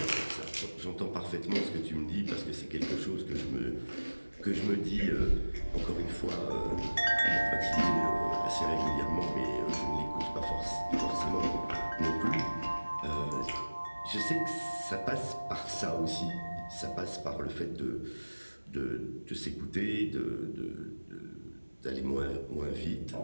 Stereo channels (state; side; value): inverted; both; correlation -1.00